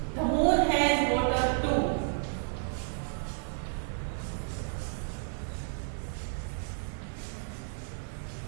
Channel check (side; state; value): left; silent; digital silence